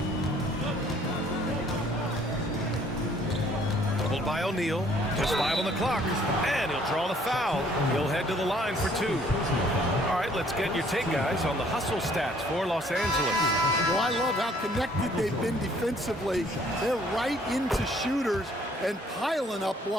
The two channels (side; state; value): both; normal; correlation 0.61